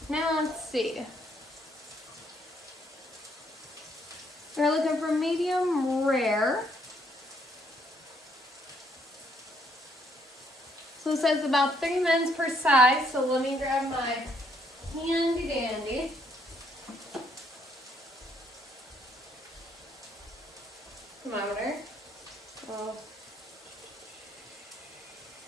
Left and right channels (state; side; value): normal; both; correlation 0.69